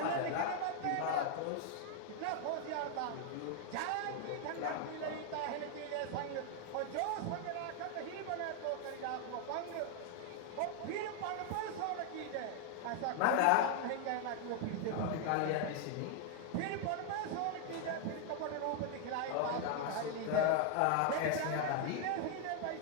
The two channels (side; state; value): both; different; correlation 0.00